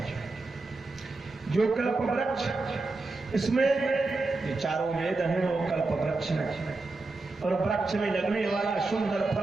जो कल्प वृक्ष इसमें जो चारों वेद हैं वो कल्प वृक्ष है और वृक्ष में लगने वाला सुंदर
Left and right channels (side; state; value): left; quieter; 3.4 dB